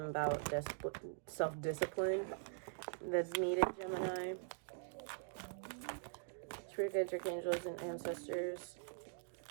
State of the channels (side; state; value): left; silent; digital silence